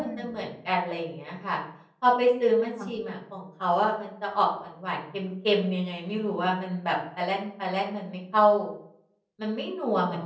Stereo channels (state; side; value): identical; both; correlation 1.00